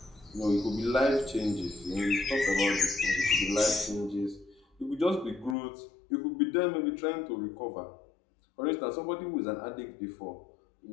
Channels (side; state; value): right; drops out; at 5.6 s